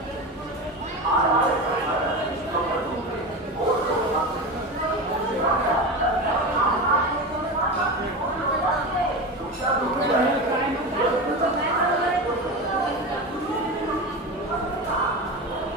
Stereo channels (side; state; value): both; normal; correlation 0.24